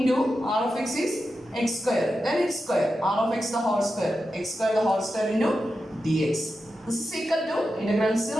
r of x is x square, then x square, r of x the whole square, x square the whole square into dx. This is equal to integral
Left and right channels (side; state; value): both; normal; correlation 0.90